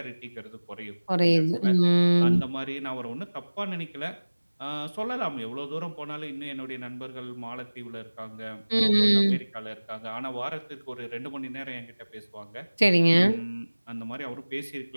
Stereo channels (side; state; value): both; inverted; correlation -1.00